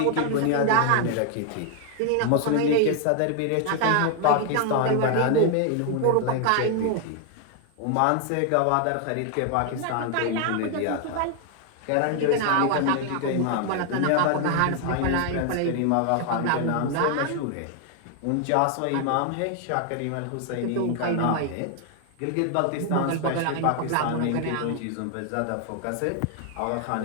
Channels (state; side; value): different; both; correlation 0.00